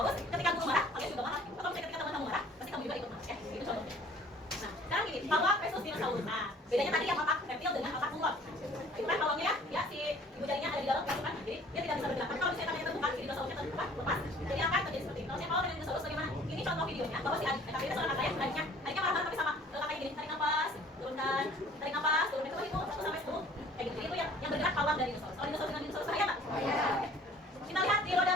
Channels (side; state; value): both; normal; correlation 0.52